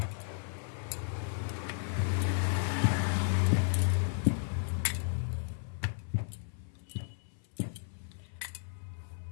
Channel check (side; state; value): right; silent; 55 dB below the other